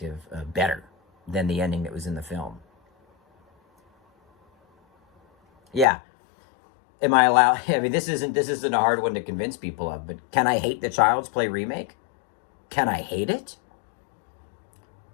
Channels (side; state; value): right; drops out; at 5.9 s